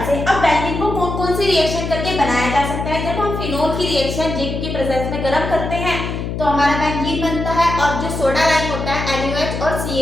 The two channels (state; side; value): noise; left; hum, 4 dB below the sound